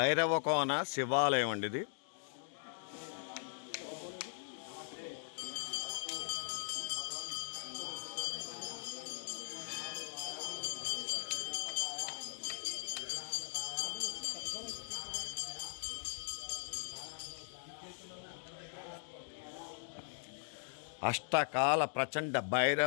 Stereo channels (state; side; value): silent; right; digital silence